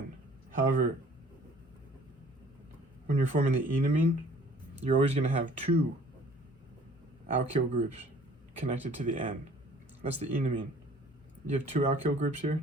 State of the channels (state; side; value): normal; both; correlation 0.53